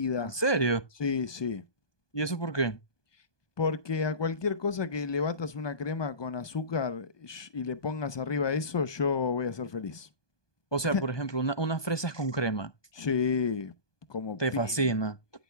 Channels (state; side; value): late; right; 1.2 ms